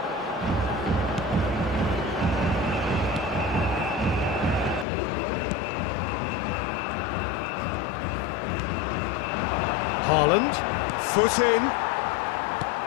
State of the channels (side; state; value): right; drops out; at 4.9 s